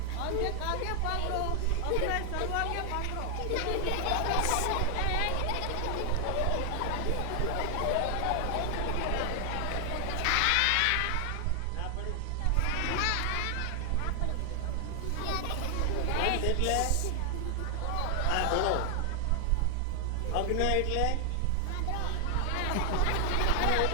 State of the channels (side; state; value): both; different; correlation 0.00